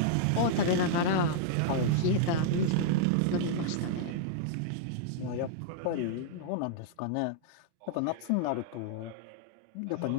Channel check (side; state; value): both; different; correlation -0.02